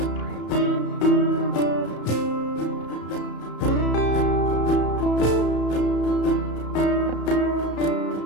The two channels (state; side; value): late; right; 33 ms